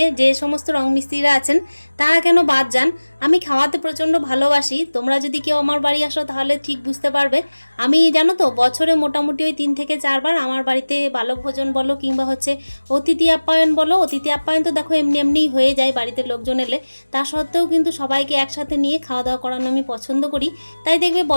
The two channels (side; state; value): both; inverted; correlation -1.00